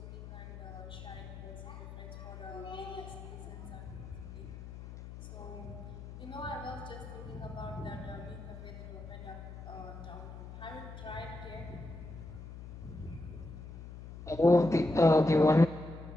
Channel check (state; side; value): noise; left; hum, 12 dB below the sound